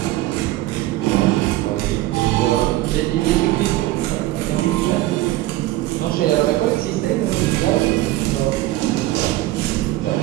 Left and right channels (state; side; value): quieter; left; 16.5 dB